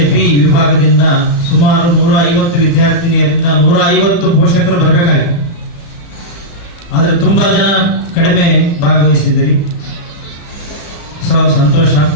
ಬಿ ವಿಭಾಗದಿಂದ ಸುಮಾರು 150 ವಿದ್ಯಾರ್ಥಿನಿಯರಿಂದ 150 ಪೋಷಕರು ಬರಬೇಕಾಗಿದೆ. ಆದರೆ ತುಂಬಾ ಜನ ಕಡಿಮೆ ಭಾಗವಹಿಸಿದ್ದೀರಿ. ಸಂತೋಷ,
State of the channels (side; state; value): right; late; 35 ms